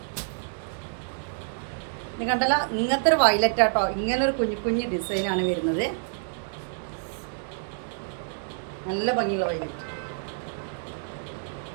ഇത് കണ്ടല്ലോ, ഇങ്ങനത്തെ ഒരു വയലറ്റ് കേട്ടോ. ഇങ്ങനൊരു കുഞ്ഞു ഡിസൈനാണ് വരുന്നത്. നല്ല ഭംഗിയുള്ള വയലറ്റ്.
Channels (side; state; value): left; silent; digital silence